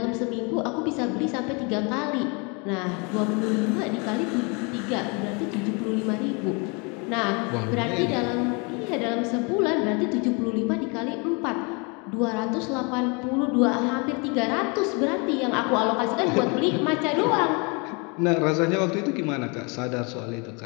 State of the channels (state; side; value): quieter; right; 31.6 dB